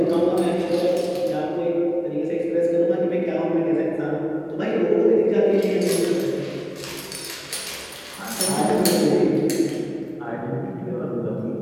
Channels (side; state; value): both; identical; correlation 1.00